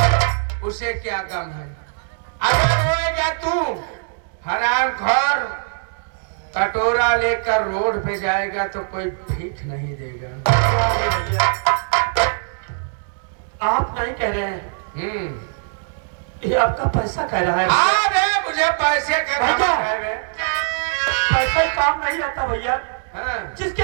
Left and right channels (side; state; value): left; silent; digital silence